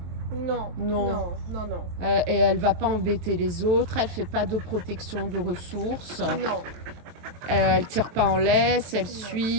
Non, Non. non, non, non. Et elle va pas embêter les autres, elle fait pas de protection de ressources. Non, Elle tire pas en laisse, elle Non.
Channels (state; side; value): late; left; 23 ms